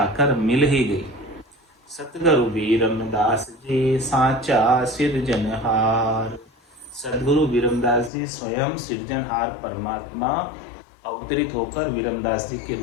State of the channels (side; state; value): right; drops out; at 8.1 s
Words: मिल ही गई। सतगुरु विरमदास जी साचा सिरजनहार, सदगुरु विरमदास जी स्वयं सृजनहार परमात्मा अवतरित होकर विरमदास जी के